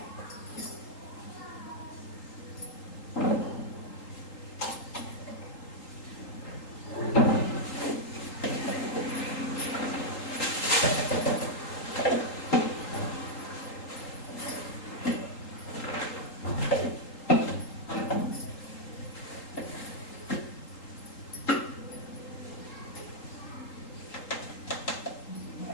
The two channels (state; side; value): late; right; 3.8 ms